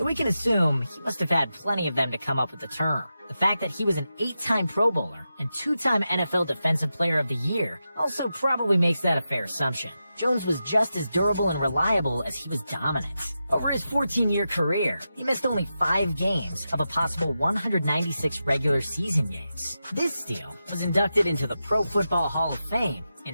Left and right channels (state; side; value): inverted; both; correlation -0.90